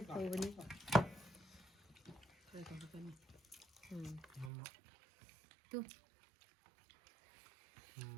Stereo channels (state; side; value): drops out; left; at 4.5 s